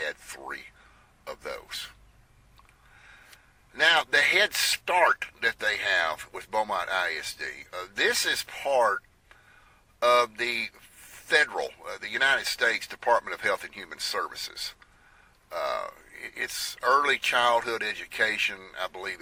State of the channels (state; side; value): identical; both; correlation 1.00